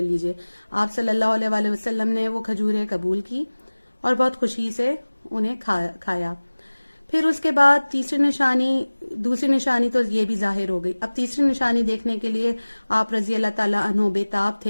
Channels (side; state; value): both; inverted; correlation -1.00